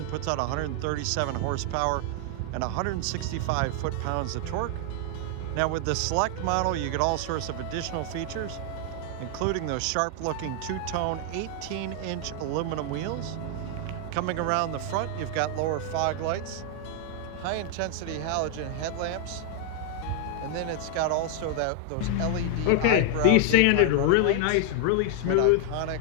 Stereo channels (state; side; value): different; both; correlation 0.00